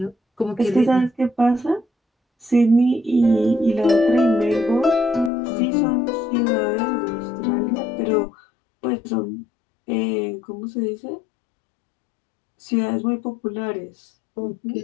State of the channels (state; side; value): drops out; right; at 5.3 s